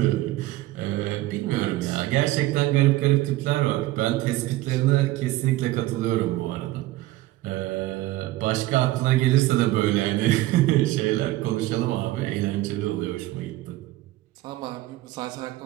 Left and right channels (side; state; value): left; quieter; 17.0 dB